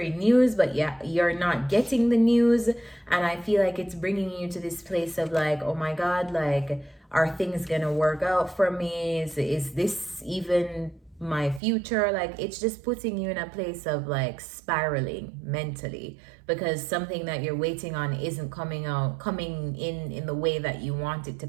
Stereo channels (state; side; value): drops out; left; at 11.6 s